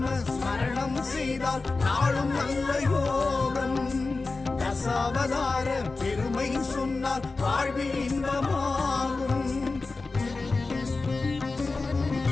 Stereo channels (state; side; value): quieter; right; 3.7 dB